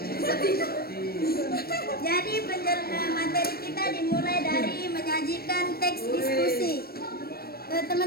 Jadi materi kita dimulai dari menyajikan teks diskusi.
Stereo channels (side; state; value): right; late; 0.44 ms